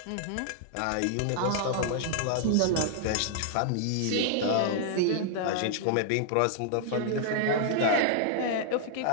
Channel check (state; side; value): different; both; correlation -0.01